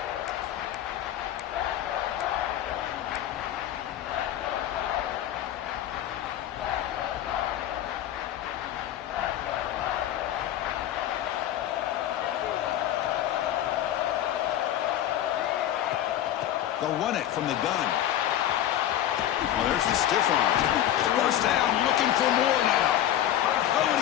They'll run it from the gun. Oh, there's the stiff arm. First down, looking for more now. Oh, and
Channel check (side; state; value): right; quieter; 11.9 dB